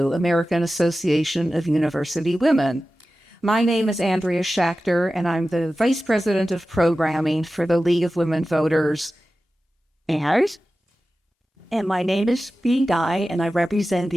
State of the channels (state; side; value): normal; both; correlation 0.94